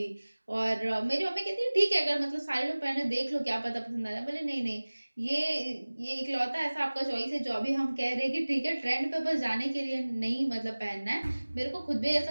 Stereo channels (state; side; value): inverted; both; correlation -1.00